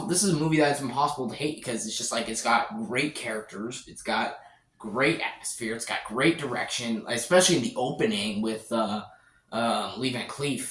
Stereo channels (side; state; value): both; identical; correlation 1.00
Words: This is a movie that's impossible to hate because it's just like it's got great characters, it's got great atmosphere, it's got great direction, especially in the opening with Lee Van